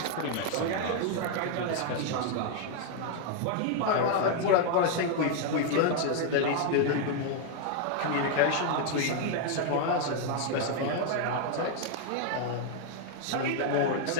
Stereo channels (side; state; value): both; different; correlation 0.00